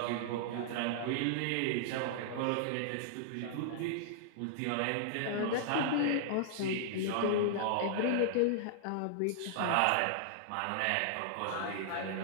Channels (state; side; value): different; both; correlation -0.01